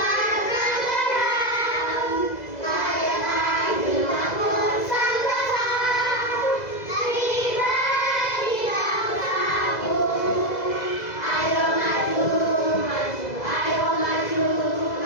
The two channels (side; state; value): right; late; 2.0 ms